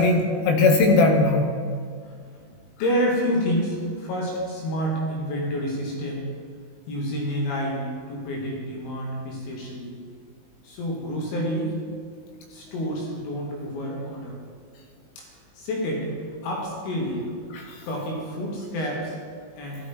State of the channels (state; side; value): late; right; 19 ms